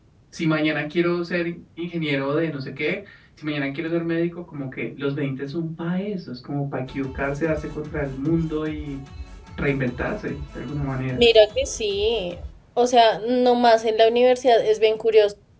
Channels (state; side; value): identical; both; correlation 1.00